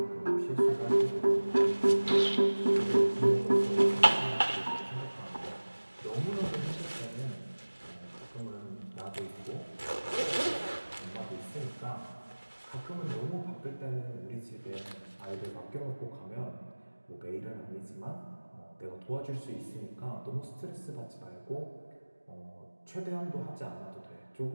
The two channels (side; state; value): both; inverted; correlation -1.00